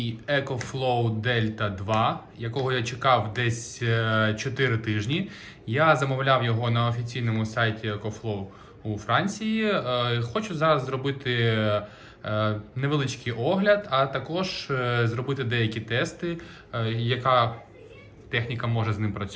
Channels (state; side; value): identical; both; correlation 1.00